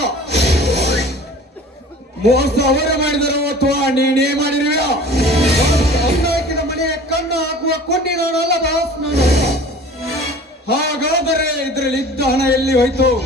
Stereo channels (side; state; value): both; normal; correlation 0.44